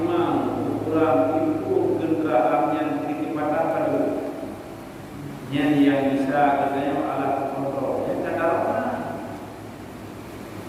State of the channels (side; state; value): both; identical; correlation 1.00